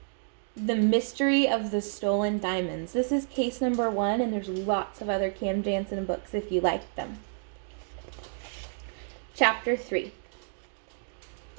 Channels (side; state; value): left; silent; digital silence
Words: The Mystery of the Stolen Diamonds. This is case number 1, and there's lots of other Cam Jansen books if you like them. Chapter 3.